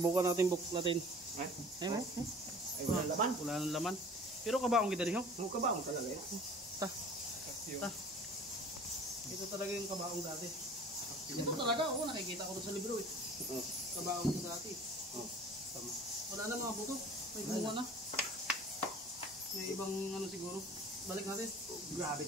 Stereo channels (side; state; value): both; normal; correlation 0.45